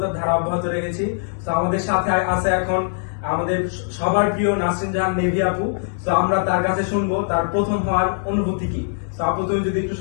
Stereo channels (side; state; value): right; silent; digital silence